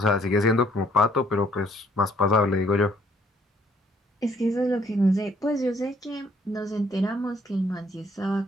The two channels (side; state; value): both; normal; correlation 0.65